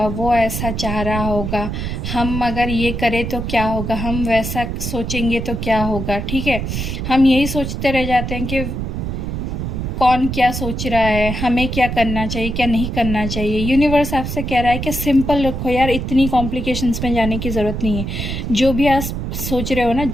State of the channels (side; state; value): right; noise; rumble, 4 dB below the sound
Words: वो ऐसा चाह रहा होगा, हम अगर ये करें तो क्या होगा, हम वैसा सोचेंगे तो क्या होगा, ठीक है। हम यही सोचते रह जाते हैं कि कौन क्या सोच रहा है, हमें क्या करना चाहिए, क्या नहीं करना चाहिए। यूनिवर्स आपसे कह रहा है कि सिंपल रखो यार, इतनी कॉम्प्लिकेशंस में जाने की ज़रूरत नहीं है। जो भी आप सोच रहे हो ना,